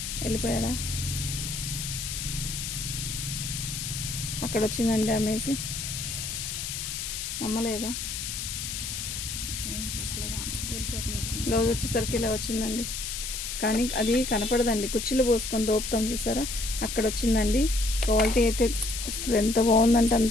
వెళ్ళిపోయాడా. అక్కడ వచ్చిందండి డ్యామేజ్. అమ్మలేదా. బ్లౌజ్ వచ్చేసరికి ఇలా వచ్చిందండి. కానీ అది కనపడదండి, కుర్చీలు పోసుకొని దోపుతాం చూసారా, అక్కడ వచ్చిందండి. క్వాలిటీ అయితే అసలు ఎంత బాగుందంటే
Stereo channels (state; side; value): noise; left; hiss, 5 dB below the sound